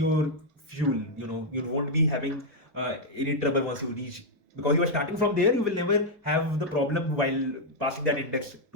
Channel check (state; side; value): normal; both; correlation -0.02